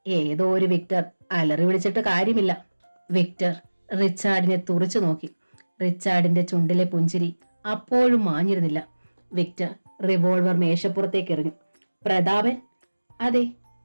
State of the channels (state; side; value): inverted; both; correlation -1.00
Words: ഏതോ ഒരു വിക്ടർ അലറി വിളിച്ചിട്ട് കാര്യമില്ല. വിക്ടർ റിച്ചാർഡിനെ തുറച്ചു നോക്കി. റിച്ചാർഡിന്റെ ചുണ്ടിലെ പുഞ്ചിരി അപ്പോഴും മാഞ്ഞിരുന്നില്ല. വിക്ടർ റിവോൾവർ മേശപ്പുറത്തേക്ക് എറിഞ്ഞു. പ്രതാപൻ? അതെ,